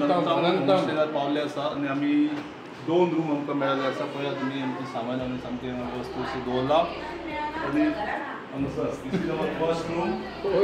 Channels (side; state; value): both; identical; correlation 1.00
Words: पावले आसा आनी आमी 2 रूम आमकां मेळ्ळे आसा. पळया तुमी आमचे सामान आमी सामके वस्तू दवरला आनी हांगासर फर्स्ट रूम